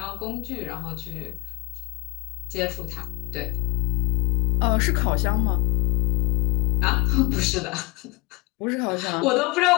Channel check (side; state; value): right; quieter; 26.7 dB